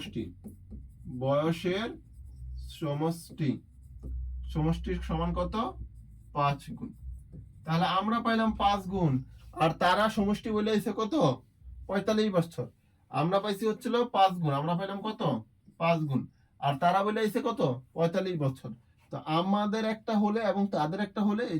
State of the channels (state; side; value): identical; both; correlation 1.00